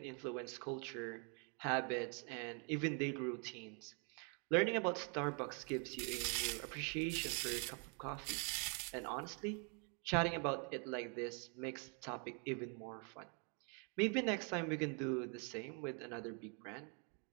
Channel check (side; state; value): left; quieter; 37.7 dB